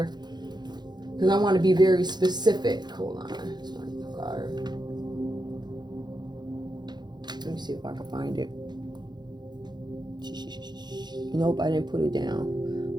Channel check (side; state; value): left; late; 0.21 ms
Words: because I want to be very specific. Hold on. Let me see if I can find it. Nope, I didn't put it down.